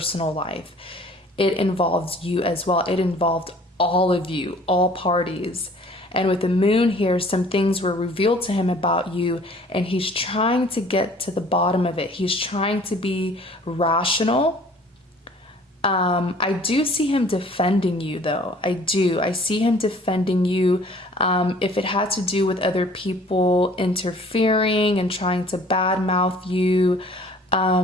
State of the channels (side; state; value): both; normal; correlation 0.52